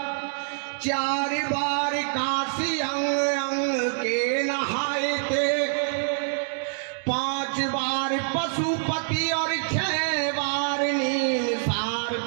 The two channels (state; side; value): silent; left; digital silence